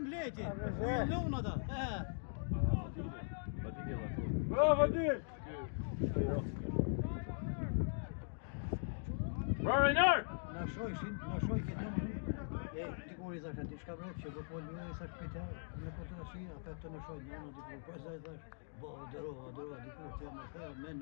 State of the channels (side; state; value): right; silent; digital silence